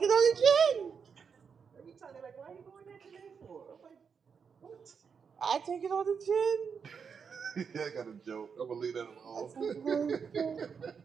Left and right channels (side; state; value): left; quieter; 6.3 dB